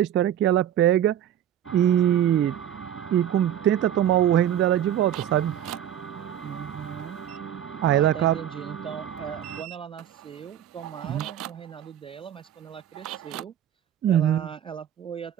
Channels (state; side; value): quieter; left; 10.8 dB